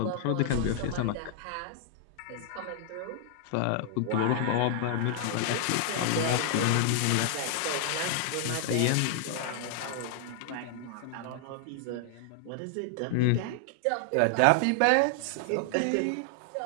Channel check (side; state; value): both; different; correlation 0.00